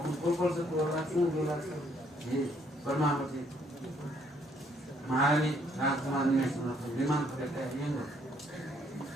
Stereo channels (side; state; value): both; normal; correlation 0.67